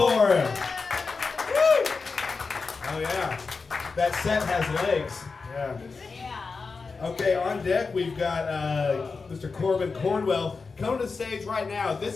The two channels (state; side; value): quieter; right; 4.5 dB